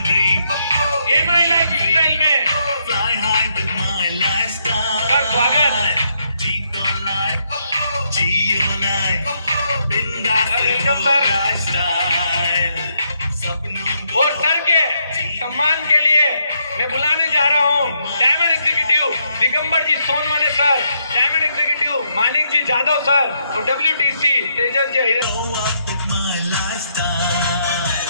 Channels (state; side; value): inverted; both; correlation -0.76